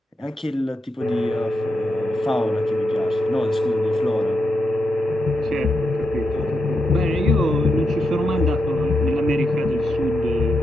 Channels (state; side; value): normal; both; correlation 0.84